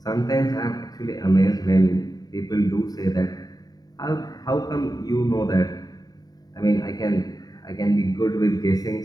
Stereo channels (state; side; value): late; right; 0.18 ms